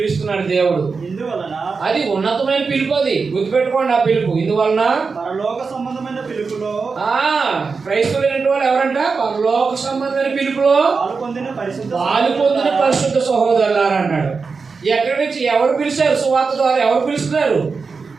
దేవుడు. ఇందువలన అది ఉన్నతమైన పిలుపు, అది గుర్తుపెట్టుకోండి. ఆ పిలుపు ఇందువలన పరలోక సంబంధమైన పిలుపులో క్రైస్తవులైన వాళ్ళు ఎవరంట? పరలోక సంబంధమైన పిలుపులో పాలు పొందిన పరిశుద్ధ సహోదరులారా అన్నాడు. ఎక్కడి నుంచి ఎవరు పిలిచారు? సువార్త ద్వారా. ఎవరు పిలుస్తున్నారు?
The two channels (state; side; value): quieter; left; 4.8 dB